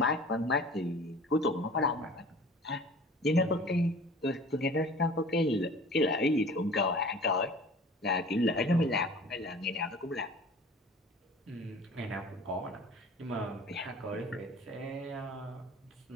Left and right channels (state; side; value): normal; both; correlation 0.44